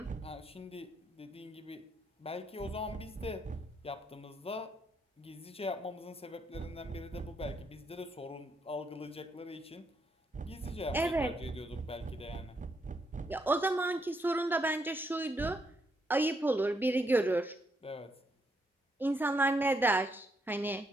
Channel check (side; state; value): both; normal; correlation 0.77